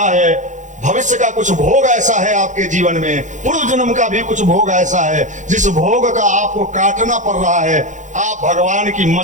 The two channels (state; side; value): late; left; 0.36 ms